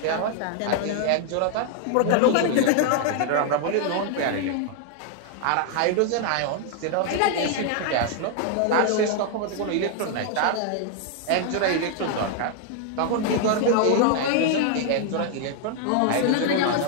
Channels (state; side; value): different; both; correlation 0.00